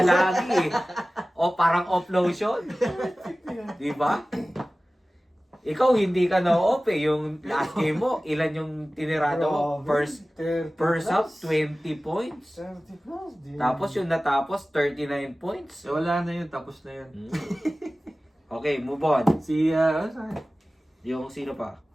lagi eh. O parang off lotion. Di ba? Ikaw hindi ka na off eh. Yung last game mo, ilan yung tinirado mo? First half, 20 points. 30 plus. Tapos yung natapos, 39 points. Eh, wala na yun. Tapos na yun. Hmm. Okay, move on. Si, saan? Yung sino pa?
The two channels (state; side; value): normal; both; correlation 0.97